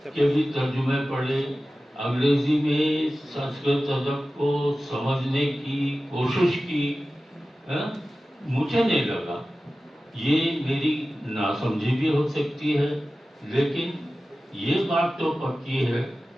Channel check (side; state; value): both; normal; correlation 0.95